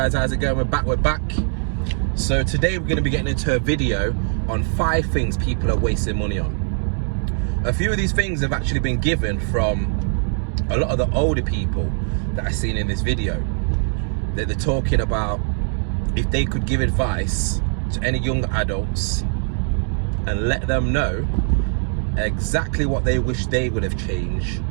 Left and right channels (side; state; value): left; silent; 56 dB below the other